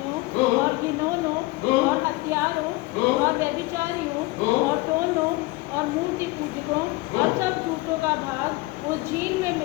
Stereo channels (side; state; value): right; quieter; 21.8 dB